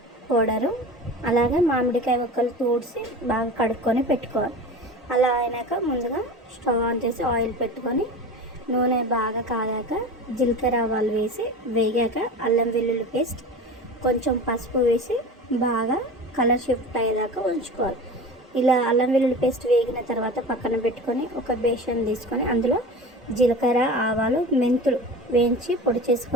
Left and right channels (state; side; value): normal; both; correlation 0.33